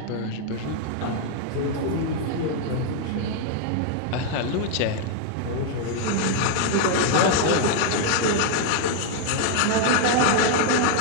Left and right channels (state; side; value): different; both; correlation 0.00